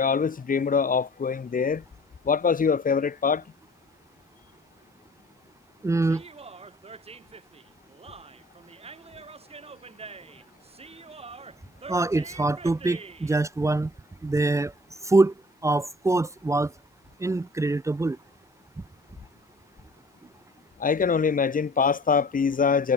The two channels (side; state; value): both; normal; correlation 0.52